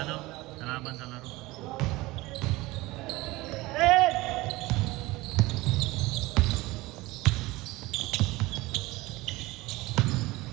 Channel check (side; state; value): left; quieter; 20.5 dB